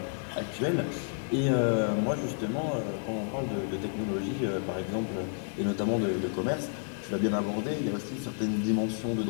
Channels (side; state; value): right; silent; 57 dB below the other